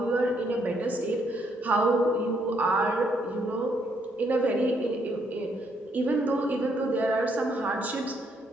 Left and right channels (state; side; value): normal; both; correlation 0.72